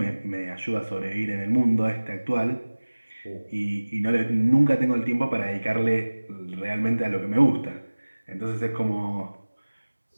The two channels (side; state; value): both; inverted; correlation -1.00